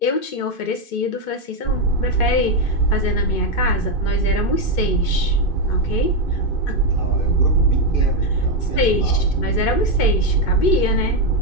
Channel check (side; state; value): right; late; 2.5 ms